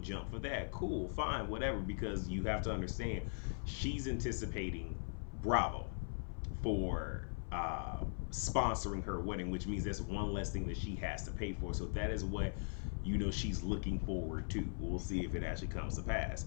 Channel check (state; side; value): silent; right; 51 dB below the other